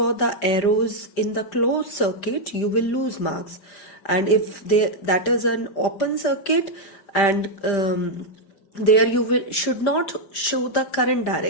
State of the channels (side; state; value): right; late; 5.1 ms